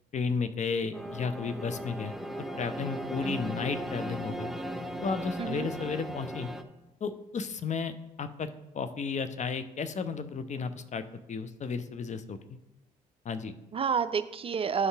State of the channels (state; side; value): normal; both; correlation 0.54